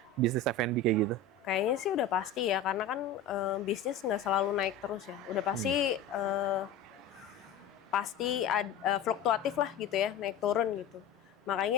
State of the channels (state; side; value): quieter; right; 4.7 dB